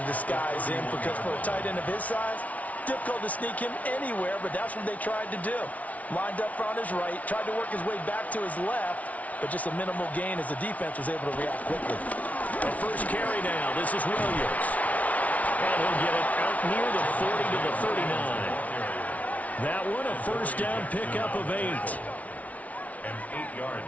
disguise him because for a tight end of his size, difficult to sneak him anywhere, but that's what they tried to do. Lined up on his right, tried to work his way back to his left, but just a minimal gain as the defense was able to react quickly. The first carry now. This is Williams. And he'll get it out near the 40 to the 39. That one, a first down pickup of 8. An 8-yard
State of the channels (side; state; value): right; late; 0.069 ms